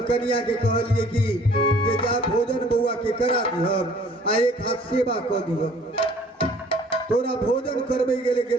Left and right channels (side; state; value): both; normal; correlation 0.54